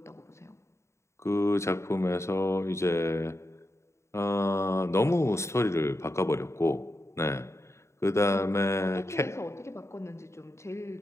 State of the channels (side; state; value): right; late; 0.14 ms